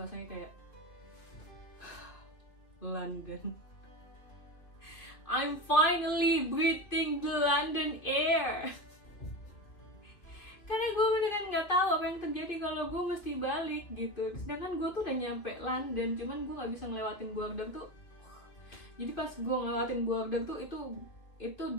kayak London. I'm finally breathing the London air. Karena gue beneran nggak tahu apa yang terjadi kalau gue mesti balik gitu. Sedangkan gue tuh udah nyampe London, cuman gue nggak bisa ngelewatin border tuh. Jadi pas gue ngelewatin border tuh itu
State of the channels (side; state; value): right; late; 2.3 ms